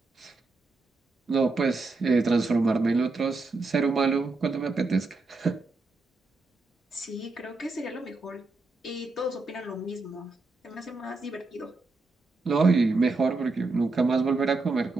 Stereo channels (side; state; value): left; quieter; 3.5 dB